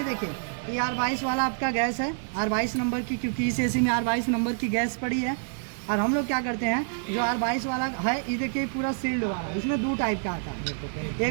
देखिए ये R22 वाला आपका गैस है, R22 नंबर की, क्योंकि इस एसी में R22 नंबर की गैस पड़ी है। और हम लोग क्या करते हैं, जो R22 वाला है ये देखिए पूरा सील्ड वाला, इसमें 2 टाइप का आता है।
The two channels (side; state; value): left; silent; digital silence